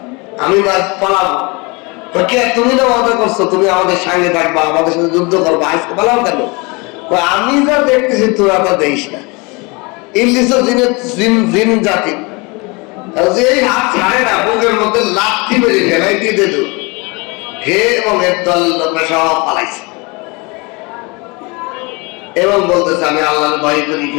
আমি পালাবো। কে তুমি না ওয়াদা করছো তুমি আমাদের সঙ্গে থাকবা, আমাদের সাথে যুদ্ধ করবো, আজকে পালাও কেন? আমি যা দেখতেছি তোরা তা দেখিস না। ইবলিস জিন জাতি, যে হাত ছাড়ে না, বুকের মধ্যে লাথি মেরে ফেলাই দিয়ে দিল, হে এবং এর দল লোকরা সব পালাইছে এবং বলতেছে আমি আল্লাহর ভয় করি,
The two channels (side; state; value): right; quieter; 27.8 dB